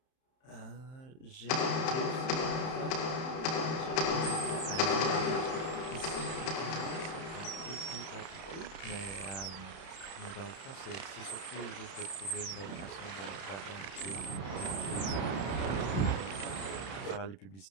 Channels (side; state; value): right; late; 31 ms